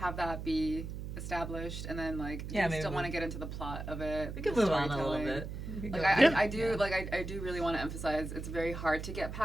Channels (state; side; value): noise; right; hum, 7 dB below the sound